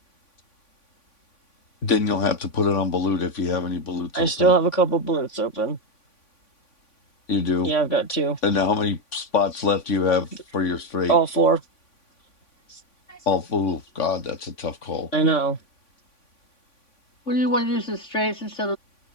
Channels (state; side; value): late; right; 3.5 ms